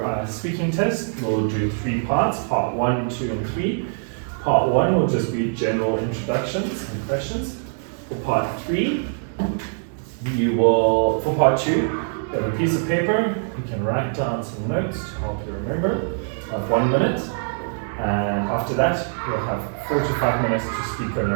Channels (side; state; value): left; silent; digital silence